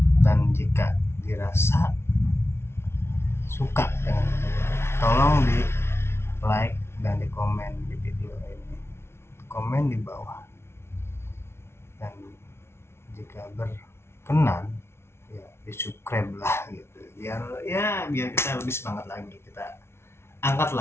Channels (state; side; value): late; right; 0.12 ms